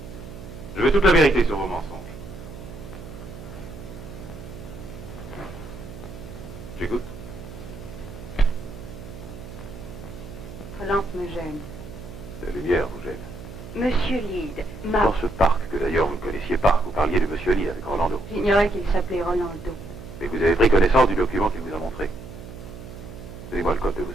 Je veux toute la vérité sur vos mensonges. J'écoute. Votre lampe me gêne. La lumière vous gêne. Monsieur Lyd m'a... Dans ce parc, que d'ailleurs vous ne connaissiez pas, vous parliez de Monsieur Lyd avec Rolando. J'ignorais qu'il s'appelait Rolando. Mais vous avez pris connaissance du document qu'il vous a montré. Donnez-moi le code de vos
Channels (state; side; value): noise; right; hum, 13 dB below the sound